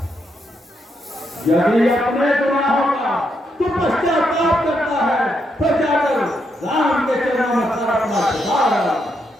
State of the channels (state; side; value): normal; both; correlation 0.79